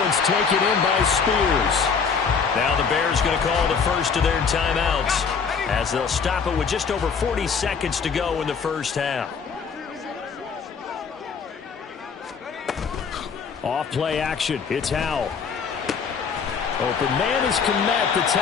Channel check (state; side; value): quieter; right; 5.9 dB